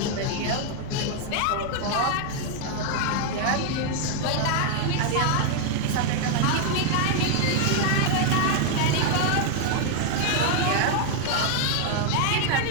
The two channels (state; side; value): different; both; correlation 0.00